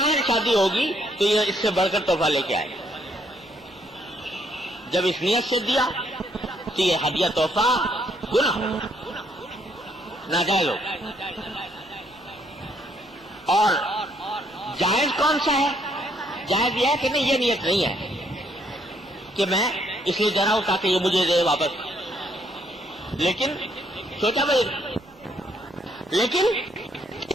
شادی ہوگی تو یہ اس سے بڑھ کر تحفہ لے کے آئے۔ جب اس نیت سے دیا تو یہ ہدیہ تحفہ گناہ ہو، ناجائز ہو۔ اور جائز کون سا ہے؟ جائز یہ ہے کہ نہیں، یہ نیت نہیں ہے کہ میں اس لیے دے رہا ہوں تاکہ یہ مجھے دے واپس، لیکن سوچا بھائی، لیکن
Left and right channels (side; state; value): both; normal; correlation 0.70